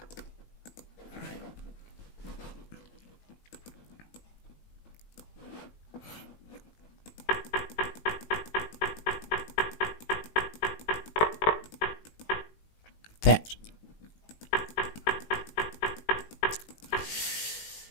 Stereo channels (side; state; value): right; late; 18 ms